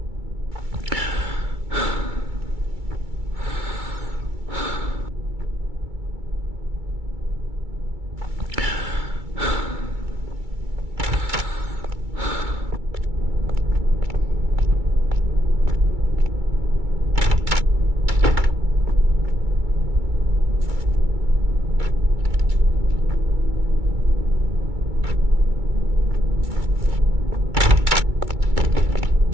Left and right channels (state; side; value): late; left; 2.3 ms